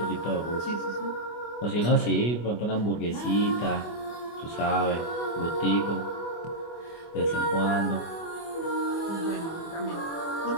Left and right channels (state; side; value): late; right; 24 ms